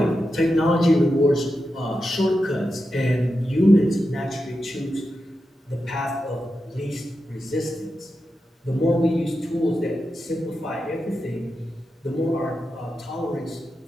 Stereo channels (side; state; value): both; normal; correlation 0.89